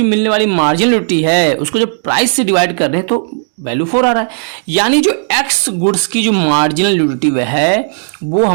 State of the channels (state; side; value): silent; left; digital silence